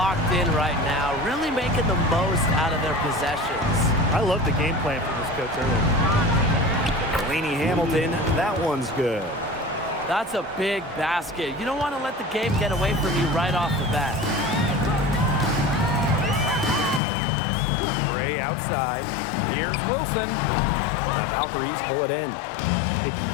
in right now, really making the most out of their possessions. I love the game plan from this coach earlier. Delaney Hamilton, that one's good. That's a big basket. You don't want to let the game get away from you right off the bat. Gray outside. Here's Wilson. The Valkyries pull it in. It's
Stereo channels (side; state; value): right; drops out; at 17.0 s